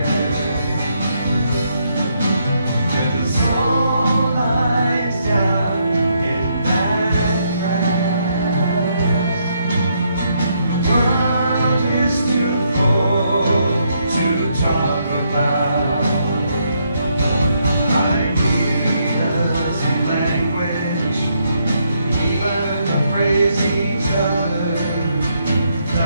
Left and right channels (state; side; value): inverted; both; correlation -0.75